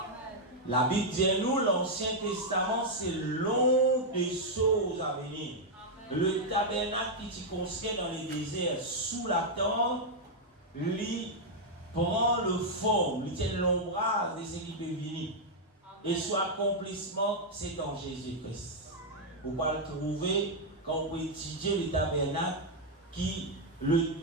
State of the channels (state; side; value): normal; both; correlation -0.03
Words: La Bible dit à nous, l'Ancien Testament, c'est long des choses à venir. Le tabernacle qui se construit dans les déserts, sous la tente, lui prend le forme, lui tient l'ombrage de ce qui peut venir. Et son accomplissement, c'est en Jésus-Christ. Vous pouvez le trouver quand vous étudiez le tabernacle,